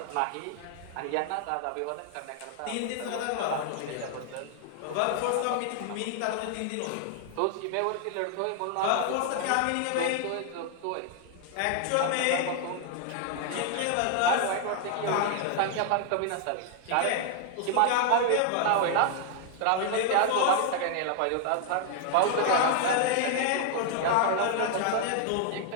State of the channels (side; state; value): both; different; correlation 0.00